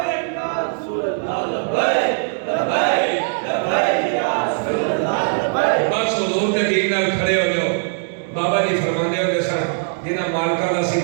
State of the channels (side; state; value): left; silent; 66 dB below the other